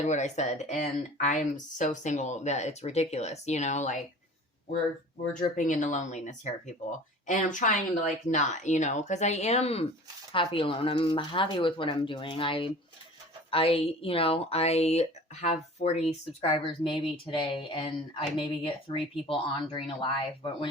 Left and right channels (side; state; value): both; normal; correlation 0.42